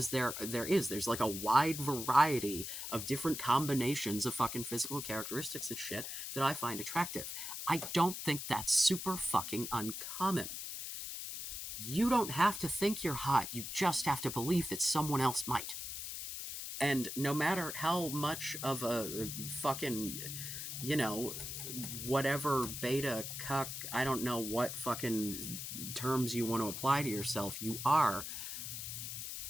there's like a wide variety of different combinations of fucking physical characteristics and shit that I find attractive. I don't think that's super fucking uncommon. You don't have to think you're hot, you just have to believe that someone else might. And no matter how much of a fucking, you know, whatever beta cuck, I don't know what fucking terms you want to apply to yourself, you are,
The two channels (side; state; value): left; noise; hiss, 6 dB below the sound